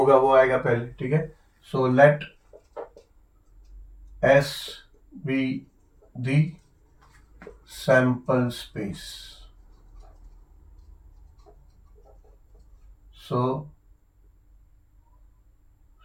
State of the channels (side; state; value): both; identical; correlation 1.00